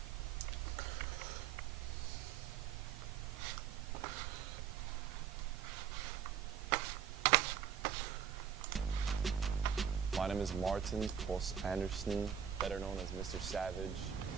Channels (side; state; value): left; quieter; 8.0 dB